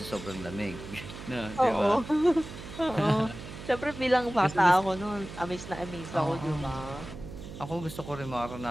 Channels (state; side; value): noise; right; hum, 12 dB below the sound